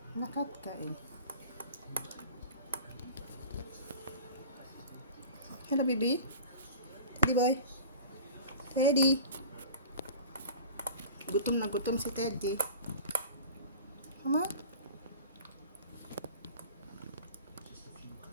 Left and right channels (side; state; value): both; inverted; correlation -0.39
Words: Lakad, kain. Hello, baby. Teddy boy. Teddy. Gutom na gutom si Teddy. Come on.